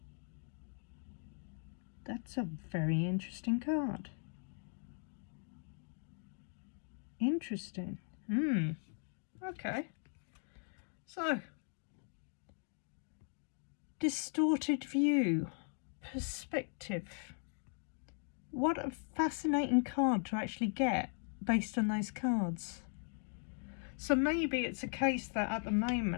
That's a very interesting card. Interesting. Okay. So, distorted view, perspective. What a fascinating card to actually get based on those cards. So maybe it's a case that at the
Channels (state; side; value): silent; right; 52 dB below the other